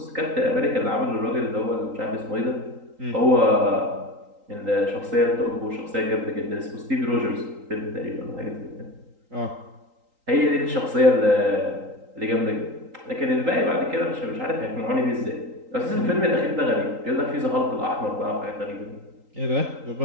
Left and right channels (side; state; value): left; late; 3.8 ms